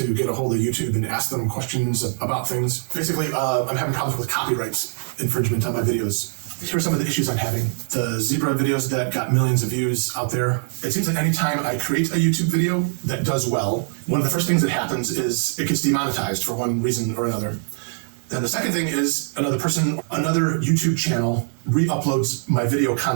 get a hold of YouTube and ask them questions about things. Basically, I'm having problems with copyright infringement on my videos. Here are some of the issues I'm having. The zebra videos that got millions of views out there. It seems like anytime I create a YouTube video that does well, one of the first things that happens is it gets demonetized for one reason or another. Then the second thing is another YouTube channel re-uploads my video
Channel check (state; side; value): silent; left; digital silence